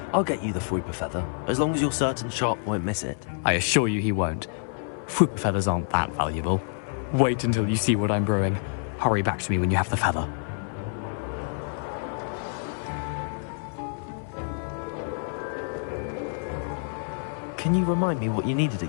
I'll get you the Fwooper feather, as long as you're certain Sharp won't miss it. I assure you he won't. Fwooper feathers aren't that valuable. Wait until you see what I'm brewing. Hurry back to me when you have the feather. Can you remind me what you needed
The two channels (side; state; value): right; silent; 60 dB below the other